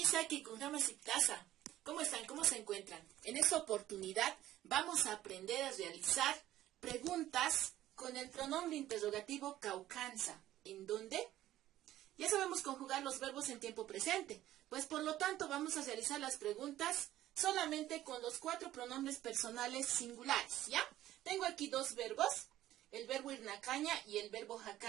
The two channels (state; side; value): quieter; left; 13.9 dB